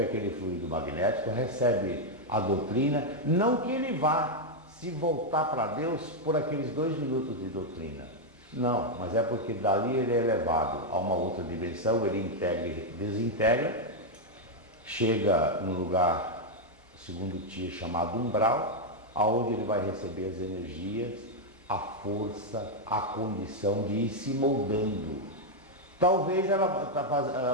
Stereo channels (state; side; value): normal; both; correlation 0.00